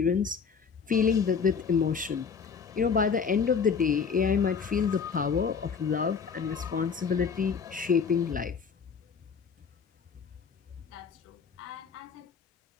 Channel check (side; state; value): right; quieter; 6.1 dB